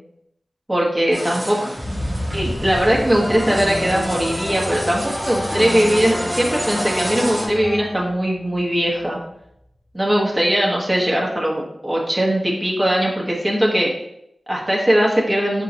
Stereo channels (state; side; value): normal; both; correlation 0.97